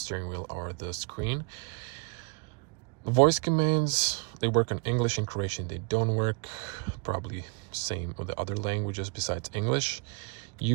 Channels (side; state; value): left; quieter; 34.3 dB